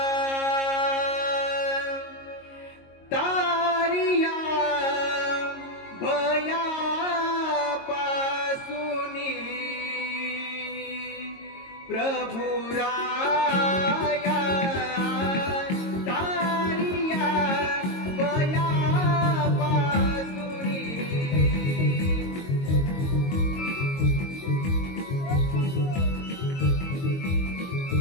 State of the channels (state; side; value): late; right; 22 ms